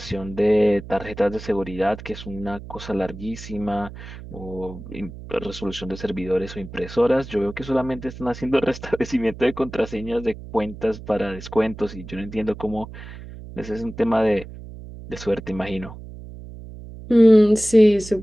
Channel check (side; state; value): right; noise; hum, 14 dB below the sound